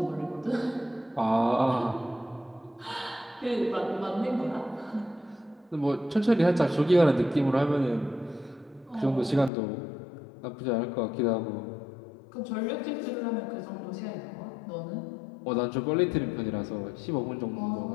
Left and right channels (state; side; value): drops out; right; at 9.5 s